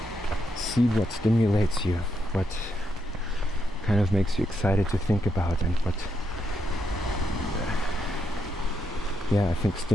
see what stimulates you, what kind of makes you excited to think about, and what, I think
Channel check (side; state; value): both; normal; correlation 0.81